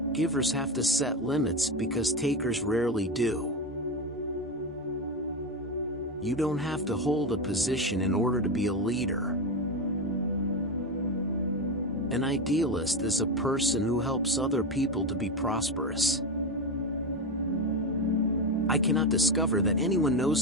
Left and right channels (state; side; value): normal; both; correlation 0.15